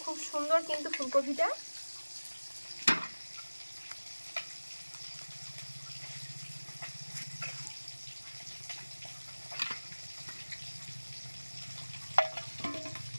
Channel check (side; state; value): both; inverted; correlation -1.00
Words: খুব সুন্দর কিন্তু ফুলকপিটা।